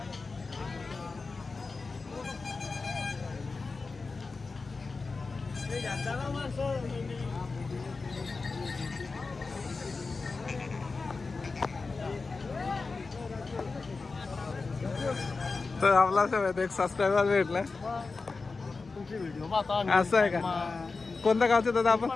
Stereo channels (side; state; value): right; quieter; 4.1 dB